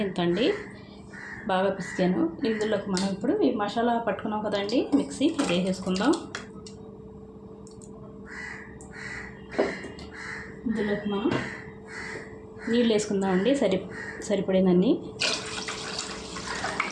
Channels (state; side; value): identical; both; correlation 1.00